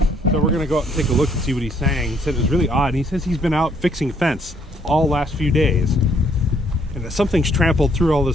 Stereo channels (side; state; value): both; normal; correlation 0.67